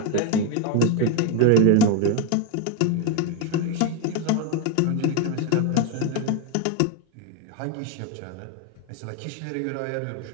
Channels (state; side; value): different; both; correlation 0.01